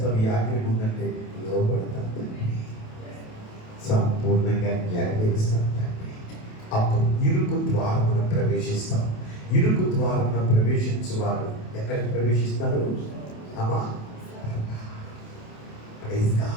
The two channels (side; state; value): right; late; 28 ms